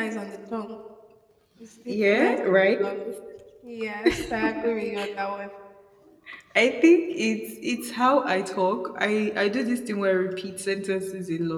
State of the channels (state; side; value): identical; both; correlation 1.00